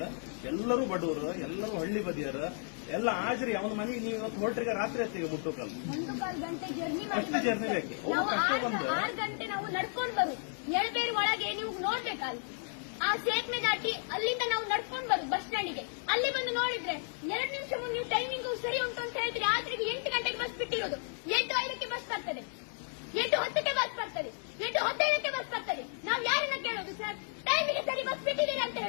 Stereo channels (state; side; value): silent; right; 56 dB below the other